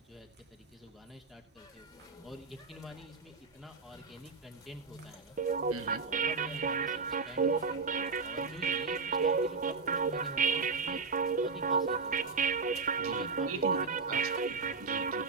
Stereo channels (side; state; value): left; quieter; 4.7 dB